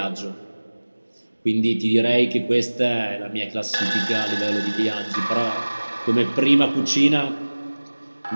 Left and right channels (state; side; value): inverted; both; correlation -1.00